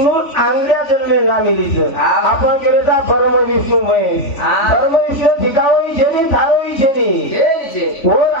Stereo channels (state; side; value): late; right; 3.5 ms